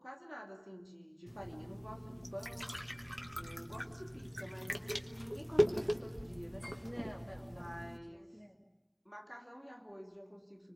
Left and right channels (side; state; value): both; identical; correlation 1.00